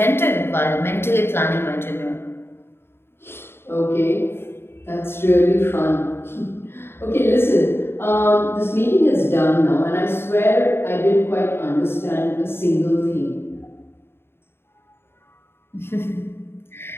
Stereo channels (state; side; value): late; right; 0.11 ms